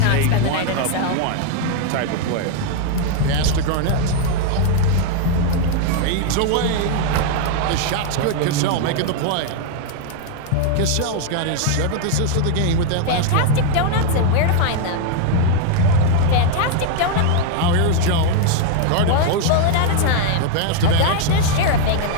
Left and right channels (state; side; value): different; both; correlation 0.00